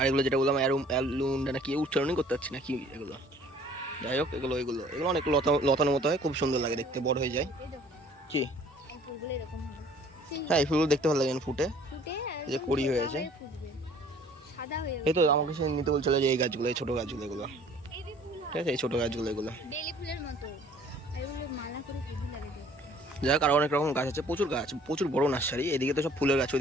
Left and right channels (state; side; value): normal; both; correlation 0.54